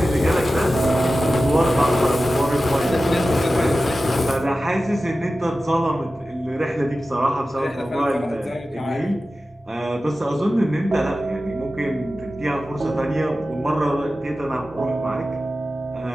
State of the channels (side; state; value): both; normal; correlation 0.94